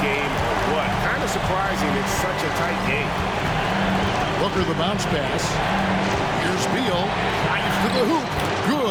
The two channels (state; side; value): identical; both; correlation 1.00